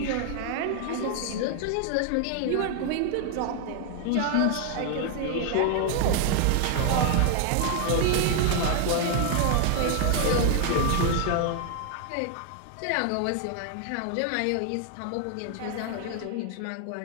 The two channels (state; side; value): different; both; correlation 0.00